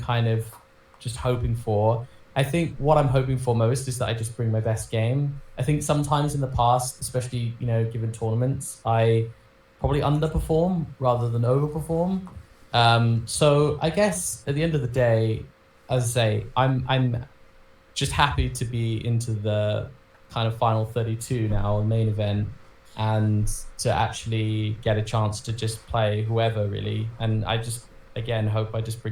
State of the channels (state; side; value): identical; both; correlation 1.00